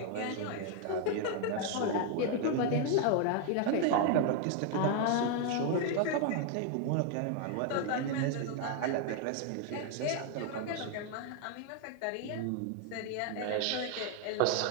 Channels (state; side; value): different; both; correlation 0.00